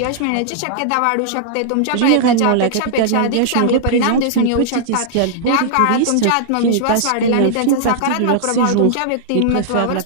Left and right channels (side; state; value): both; different; correlation -0.01